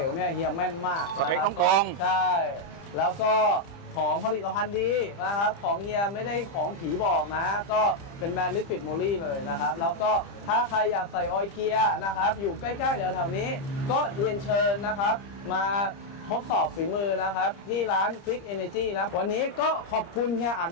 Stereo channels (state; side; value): late; right; 30 ms